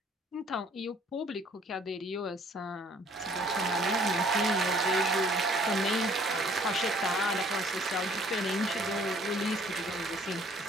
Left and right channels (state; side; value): normal; both; correlation 0.58